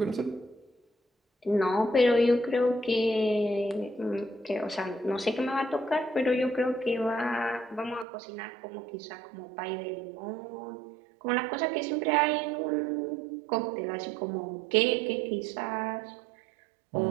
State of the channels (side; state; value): left; drops out; at 8.1 s